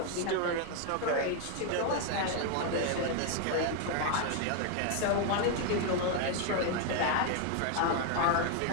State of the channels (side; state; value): both; different; correlation 0.00